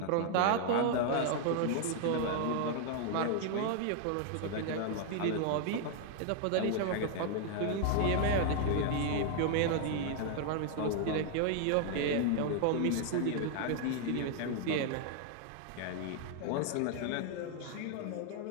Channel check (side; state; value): both; different; correlation 0.00